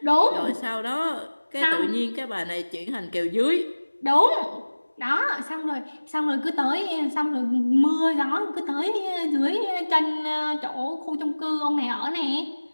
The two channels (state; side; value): inverted; both; correlation -1.00